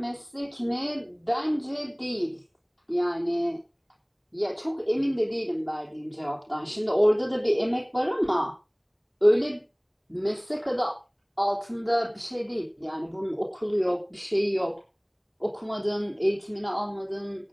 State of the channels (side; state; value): both; identical; correlation 1.00